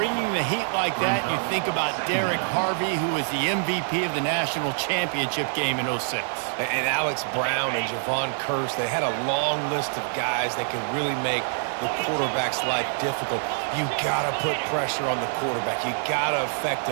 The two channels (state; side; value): silent; left; 55 dB below the other